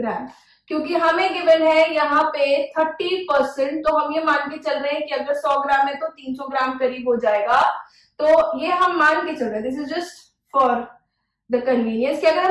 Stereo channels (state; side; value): identical; both; correlation 1.00